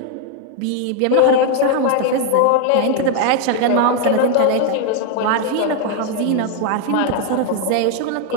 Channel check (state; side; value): different; both; correlation 0.00